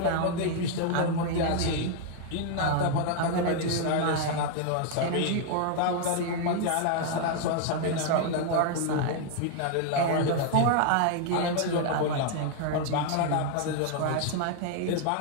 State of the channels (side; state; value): both; different; correlation 0.00